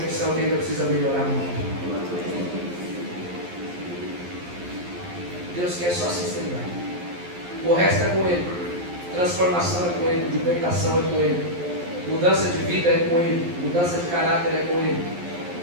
que ainda precisa melhorar muito? Deus quer só sinceridade. O resto é com Ele. Transformação é com Ele. Libertação é com Ele. Mudança de vida é com Ele. Mudança de caráter é com Ele.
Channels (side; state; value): left; late; 11 ms